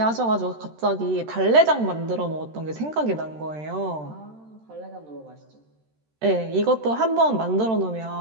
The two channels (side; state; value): left; late; 13 ms